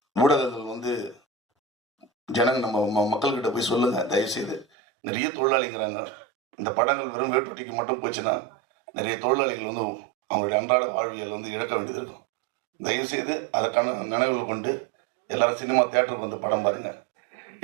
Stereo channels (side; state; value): left; drops out; at 4.7 s